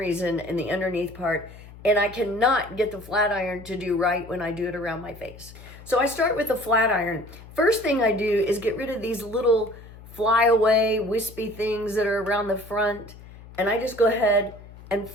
in the underneath part, and I cannot get the flat iron to do right when I do it around my face. So I start with the flat iron. First thing I do is get rid of these little flyaway, wispy things that are around the front, and I just go ahead and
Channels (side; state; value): left; noise; hum, 18 dB below the sound